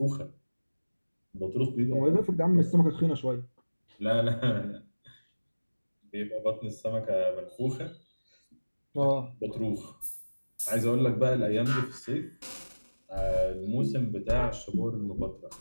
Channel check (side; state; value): both; inverted; correlation -1.00